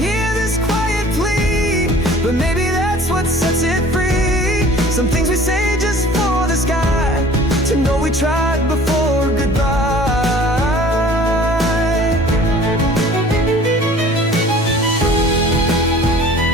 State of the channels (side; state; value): both; normal; correlation 0.48